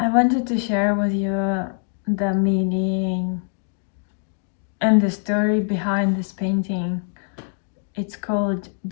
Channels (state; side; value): silent; right; 63 dB below the other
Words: wanted to share with you the meaning and the story behind this painting. It's called